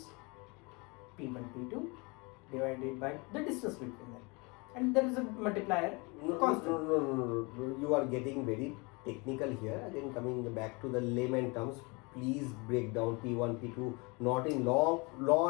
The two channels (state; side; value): quieter; right; 28.4 dB